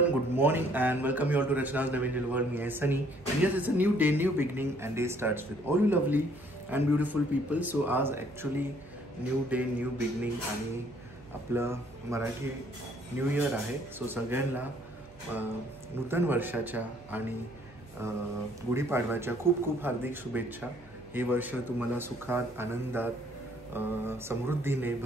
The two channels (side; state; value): right; noise; hum, 23 dB below the sound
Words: good morning and welcome you all to Rachna's Naveen Little World. Me, Sunny, and yes, it's a new day, new beginning, and day starts with all you lovely and beautiful people. So आज actually new day, new beginning आणि आपलं मराठी न्यू इयर आहे. सो सगळ्यांना नूतन वर्षाच्या आणि गुढीपाडव्याच्या खूप खूप हार्दिक शुभेच्छा. हे वर्ष तुम्हाला सुखात, आनंदात, समृद्धीने,